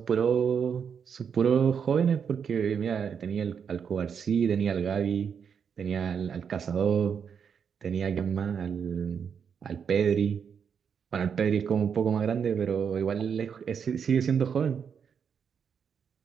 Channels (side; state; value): left; quieter; 7.1 dB